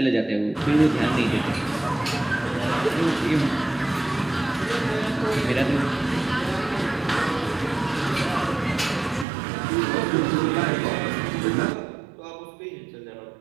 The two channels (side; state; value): left; drops out; at 9.2 s